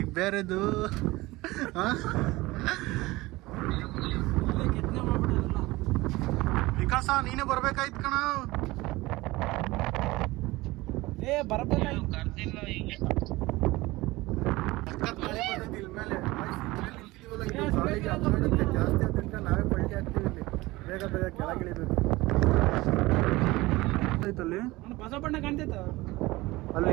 ಬೇರೆದು. ವಿಕಾಸ ನೀನೇ ಬರ್ಬೇಕಾಯ್ತು ಕಣ. ಜಾಸ್ತಿ ಅಂತ ನಾವೇ ಪಲ್ಟಿ ಆಗ್ತೀವಿ ಇಲ್ಲಿ. ಬೇಗ ಬೇಗ ಕೆಳಗಿಳಿಬೇಕು. ಅಲ್ಲಿ ಹೊಸ ಬಣ್ಣ ಕಾಣ್ತೈತ, ಅಲ್ಲಿ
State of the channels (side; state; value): left; quieter; 20.3 dB